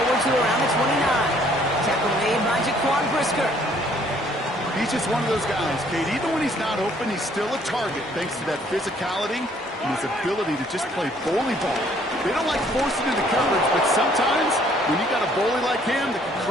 to around the 29. Tackle made by Jaquan Brisker. He's just one of those guys, Kate. Even when he's not open, he's still a target thanks to that physicality and his ability to just play bully ball. They don't like forcing into coverage, but sometimes when you got a bully like him that can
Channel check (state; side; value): normal; both; correlation 0.62